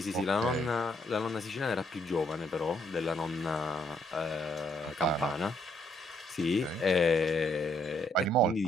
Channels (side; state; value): both; normal; correlation 0.71